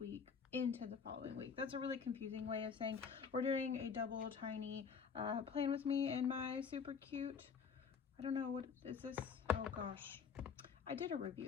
into the following week. That's a really confusing way of saying we're doing a double tiny plan with me and my super cute, I don't know, what is this? Oh gosh, I did a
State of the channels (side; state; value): right; quieter; 6.2 dB